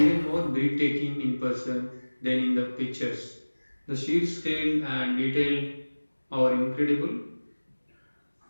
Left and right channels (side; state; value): both; inverted; correlation -1.00